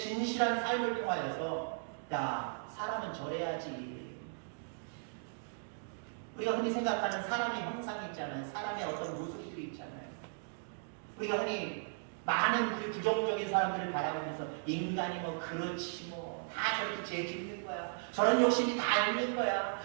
삶을 통하여서, 야, 사람은 저래야지. 우리가 흔히 생각하는 사람의 형상이 있잖아요. 사람의 어떤 모습들이 있잖아요. 우리가 흔히 많은 우리 부정적인 사람들을 바라보면서 인간이 뭐 그렇지 뭐 다 저렇게 죄 짓는 거야. 저런 욕심이 다 있는 거야.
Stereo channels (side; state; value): left; silent; digital silence